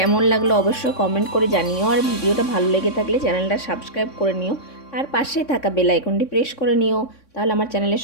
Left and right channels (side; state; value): right; late; 3.6 ms